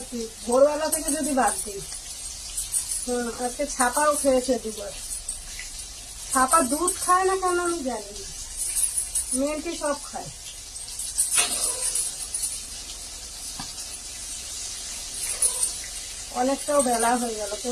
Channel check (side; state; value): both; identical; correlation 1.00